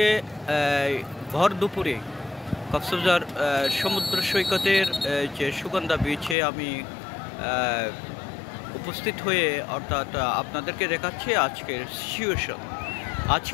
ভর দুপুরে কক্সবাজার সমুদ্র সৈকতের যে সুগন্ধা বিচে আমি উপস্থিত হয়ে অর্থাৎ আপনাদেরকে দেখাচ্ছি আজকের সিচুয়েশন,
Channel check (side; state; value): right; drops out; at 6.4 s